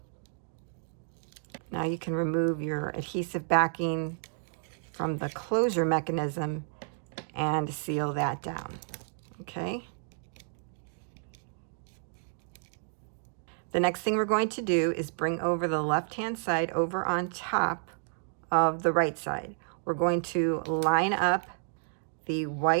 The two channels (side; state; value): left; silent; digital silence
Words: Now you can remove your adhesive backing from the closure mechanism and seal that down. Okay. The next thing we're going to do is bring over the left-hand side over on top of the right side. We're going to line up the